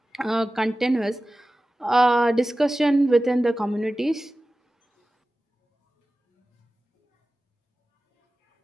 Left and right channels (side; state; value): both; normal; correlation 0.96